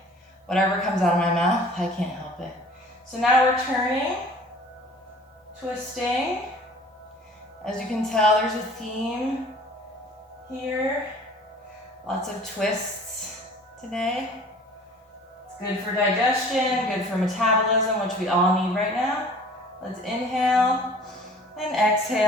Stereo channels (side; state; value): both; normal; correlation 0.48